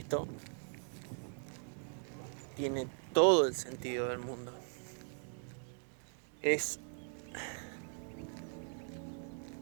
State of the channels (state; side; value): silent; left; 51 dB below the other